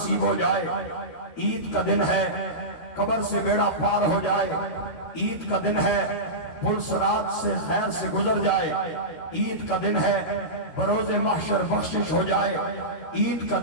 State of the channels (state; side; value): late; right; 13 ms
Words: ہو جائے عید کا دن ہے، قبر سے بیڑا پار ہو جائے عید کا دن ہے، پل صراط سے خیر سے گزر جائے عید کا دن ہے، بروز محشر بخشش ہو جائے عید کا